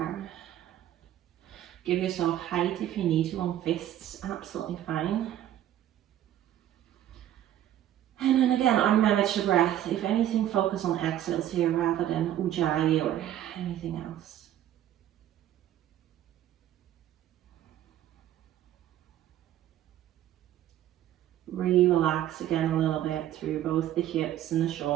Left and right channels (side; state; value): left; quieter; 11.9 dB